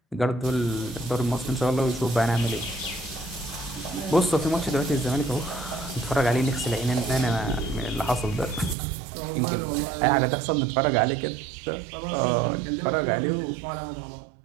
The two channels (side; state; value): left; drops out; at 8.8 s